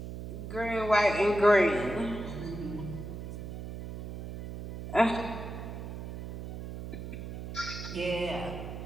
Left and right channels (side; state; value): right; noise; hum, 8 dB below the sound